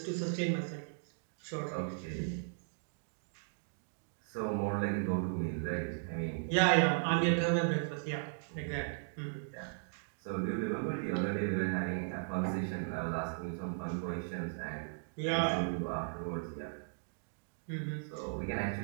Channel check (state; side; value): silent; left; digital silence